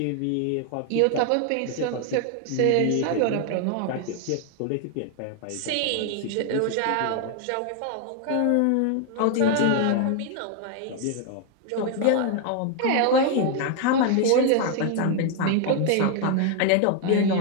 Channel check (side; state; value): both; different; correlation 0.00